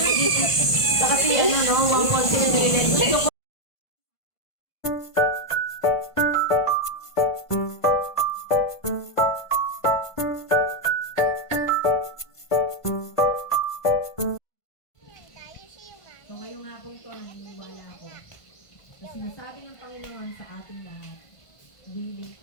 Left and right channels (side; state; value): right; late; 1.5 ms